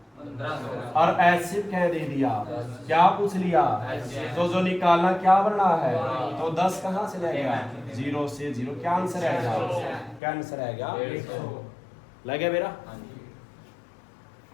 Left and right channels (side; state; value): right; drops out; at 10.2 s